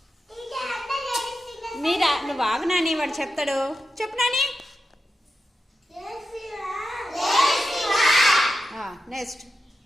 మీరా నువ్వు ఆగు నాని, వాడు చెప్తాడు. చెప్పు నాని. నెక్స్ట్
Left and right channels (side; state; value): both; normal; correlation 0.90